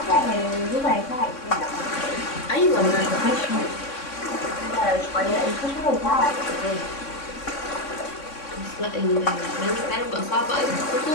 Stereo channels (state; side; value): late; right; 3.6 ms